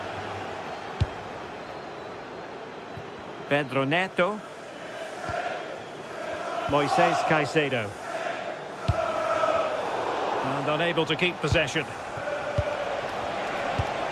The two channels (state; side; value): identical; both; correlation 1.00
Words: Pedro Neto. Moises Caicedo. And unable to keep possession.